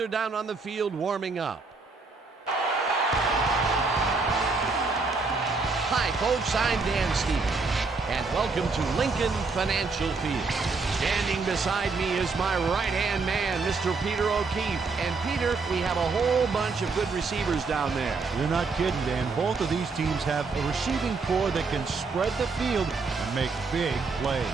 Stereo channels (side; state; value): left; quieter; 4.3 dB